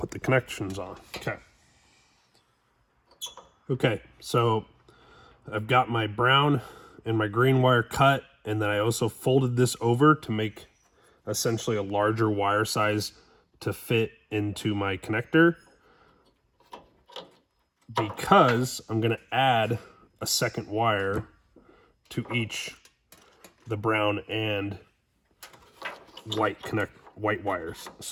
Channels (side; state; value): both; identical; correlation 1.00